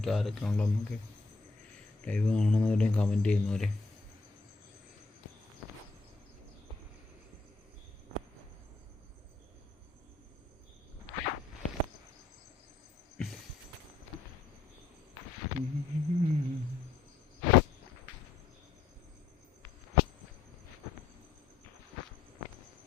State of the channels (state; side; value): quieter; right; 4.2 dB